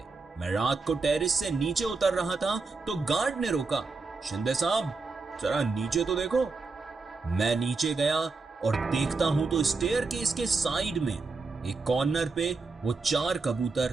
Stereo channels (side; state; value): left; quieter; 4.1 dB